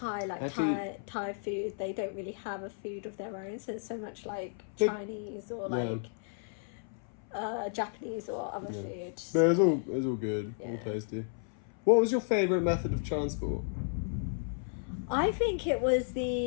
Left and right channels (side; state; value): right; silent; 56 dB below the other